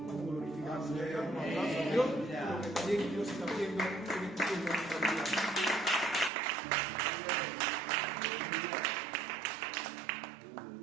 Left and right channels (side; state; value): left; drops out; at 6.3 s